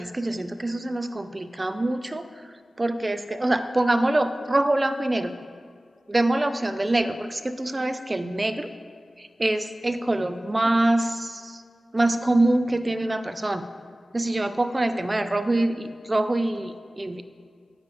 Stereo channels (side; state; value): both; normal; correlation 0.98